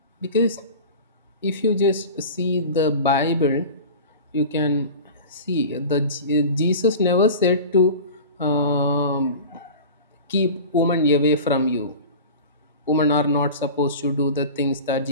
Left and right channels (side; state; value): both; inverted; correlation -0.35